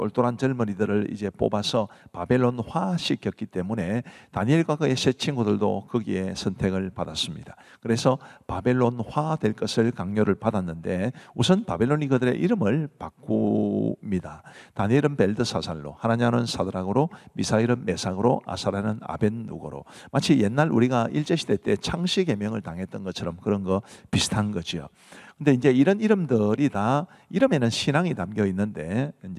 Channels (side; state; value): both; identical; correlation 1.00